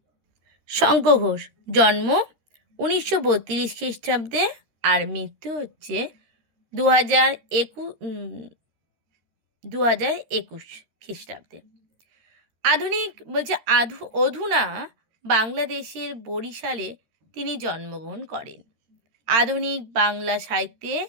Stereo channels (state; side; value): late; left; 13 ms